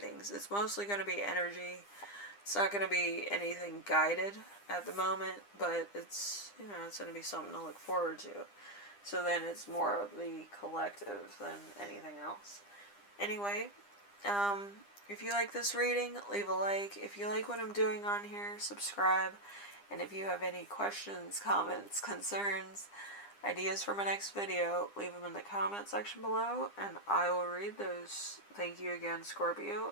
It's mostly going to be energy. It's not going to be anything guided at the moment, but it's, you know, it's going to be something to look forward to. So then it's more of the collective than anything else. Anyway, if you like this reading, leave a like. If you like what I'm doing on here, subscribe. And if you have any questions, comments, concerns, ideas for my next video, leave them in the comment section below, and I will read those. Thank you again, Scorpio,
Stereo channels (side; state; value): right; late; 9.9 ms